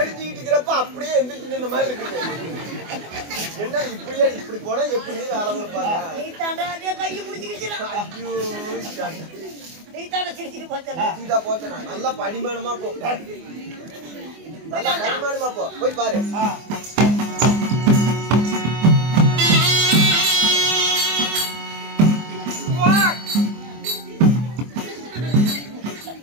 இருக்கிறப்ப அப்படியே எந்திரிச்சு நின்ற மாதிரி இருக்குது. என்ன இப்படியே இப்படி போனா எப்படி வேலை கொடுப்பாங்க? நீ தாண்டா அதே கையை பிடிச்சிக்கிச்சு. ஐயோ நீ தாண்டா சிரிச்சிட்டு போச்சா? சீதா போச்சனா நல்லா படிமானமா போ. நல்லா படிமானமா போ. போய் பாரு.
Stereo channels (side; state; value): left; late; 24 ms